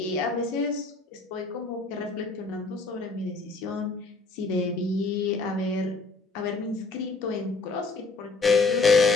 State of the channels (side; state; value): right; quieter; 3.8 dB